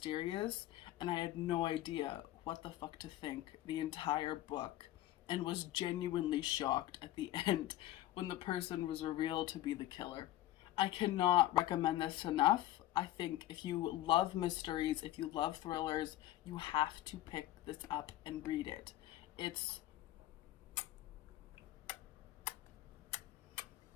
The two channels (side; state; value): right; quieter; 14.7 dB